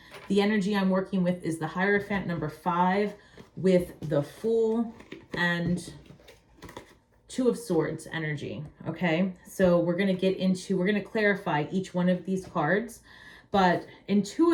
the energy I'm working with is the Hierophant, number 5, with the Fool and 2 of Swords energy. Okay, so we're going to clarify each one of these cards. But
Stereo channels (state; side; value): identical; both; correlation 1.00